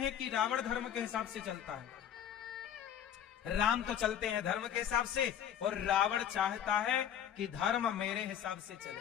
कि रावण धर्म के हिसाब से चलता है? राम तो चलते हैं धर्म के हिसाब से और रावण चाहता है कि धर्म मेरे हिसाब से चले,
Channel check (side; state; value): right; quieter; 9.7 dB